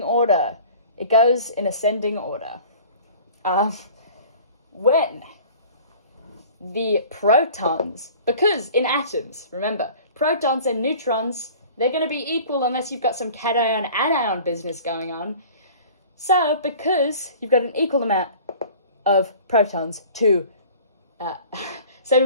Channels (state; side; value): inverted; both; correlation -0.45